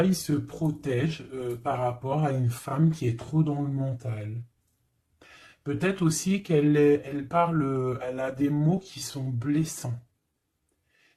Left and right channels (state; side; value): identical; both; correlation 1.00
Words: il se protège par rapport à une femme qui est trop dans le mental. Peut-être aussi elle parle, elle a des mots qui sont blessants.